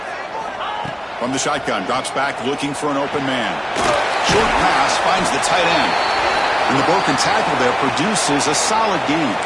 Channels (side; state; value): both; identical; correlation 1.00